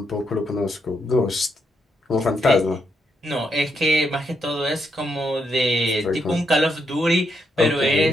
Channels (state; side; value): normal; both; correlation 0.79